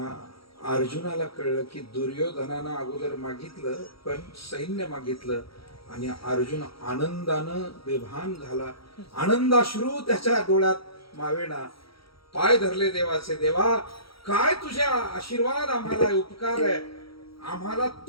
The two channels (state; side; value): late; right; 0.75 ms